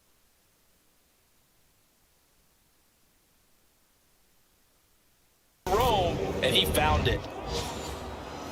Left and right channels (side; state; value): both; identical; correlation 1.00